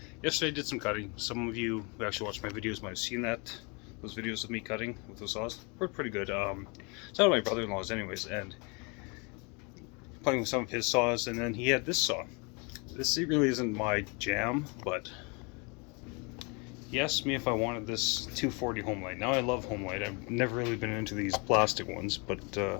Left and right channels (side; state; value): right; quieter; 31.5 dB